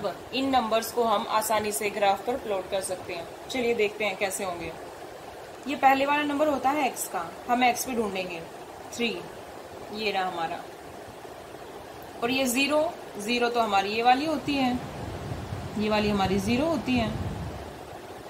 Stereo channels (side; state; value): both; identical; correlation 1.00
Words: इन नंबर्स को हम आसानी से ग्राफ पर प्लॉट कर सकते हैं। चलिए देखते हैं कैसे होंगे। ये पहले वाला नंबर होता है x का, हम x पे ढूंढेंगे 3, ये रहा हमारा। और ये 0 तो हमारी ये वाली होती है, ये वाली हमारी 0 होती है।